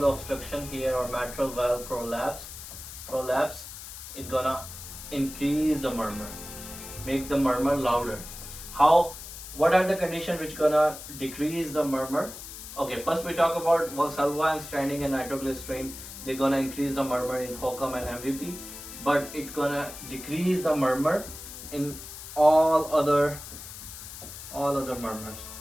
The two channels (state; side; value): noise; left; hiss, 12 dB below the sound